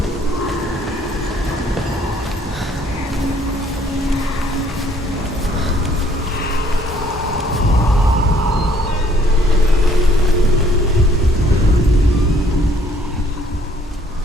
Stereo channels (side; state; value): both; normal; correlation 0.62